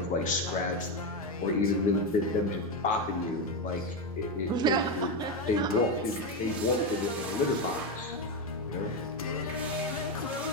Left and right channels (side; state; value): both; normal; correlation 0.10